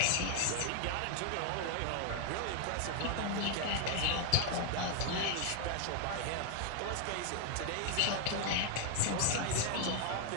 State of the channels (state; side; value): different; both; correlation 0.00